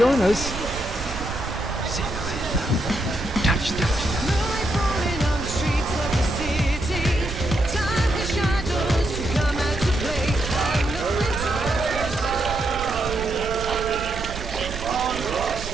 us. See you later. Touch.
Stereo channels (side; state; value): right; noise; rumble, 10 dB below the sound